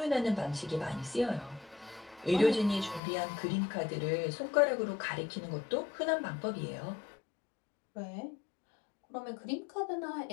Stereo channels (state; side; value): drops out; right; at 3.0 s